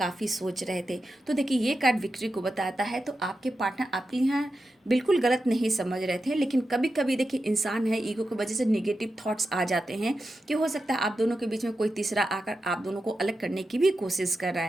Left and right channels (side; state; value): both; normal; correlation 0.90